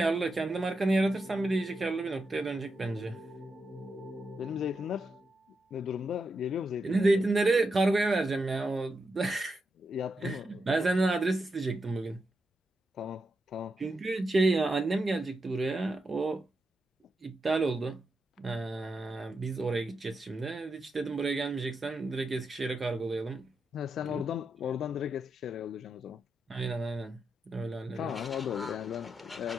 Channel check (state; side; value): normal; both; correlation 0.85